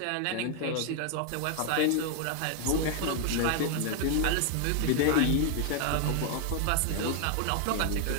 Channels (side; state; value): both; different; correlation 0.00